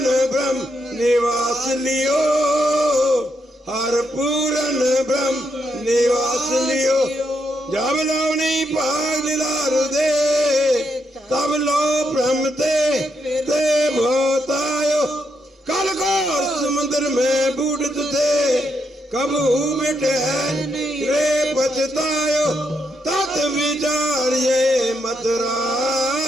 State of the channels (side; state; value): both; normal; correlation 0.80